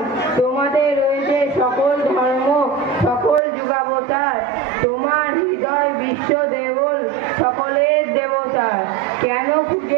তোমাদের রয়েছে সকল ধর্ম, সকল যুগাবতার, তোমার হৃদয় বিশ্ব দেবল, সকলের দেবতার। কেন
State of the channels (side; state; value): left; drops out; at 3.4 s